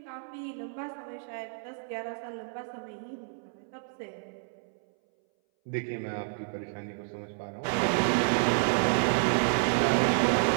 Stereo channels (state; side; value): silent; left; 58 dB below the other